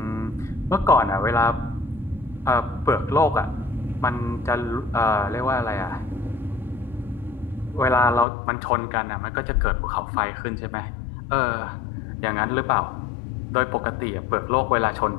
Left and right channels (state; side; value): drops out; right; at 8.2 s